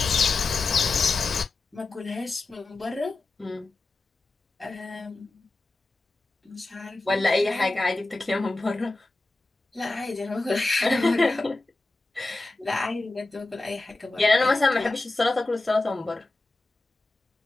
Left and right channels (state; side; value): quieter; right; 3.2 dB